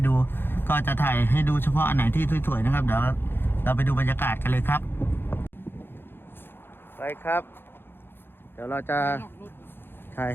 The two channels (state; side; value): late; right; 0.10 ms